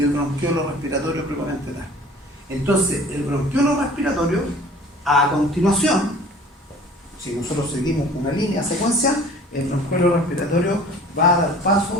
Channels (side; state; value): both; normal; correlation 0.47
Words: bronquiolo respiratorio propiamente tal. Entonces, el bronquiolo respiratorio, a continuación, si nosotros seguimos una línea secuencial, el bronquiolo respiratorio va a dar